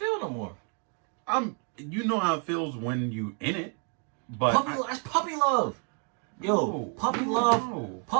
no more. You know how it feels when you in it, but that's puppy love. Yo, puppy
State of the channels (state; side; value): quieter; left; 39.4 dB